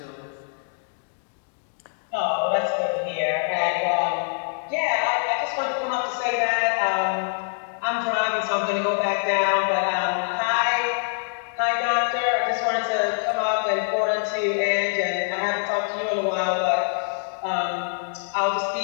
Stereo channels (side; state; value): right; silent; digital silence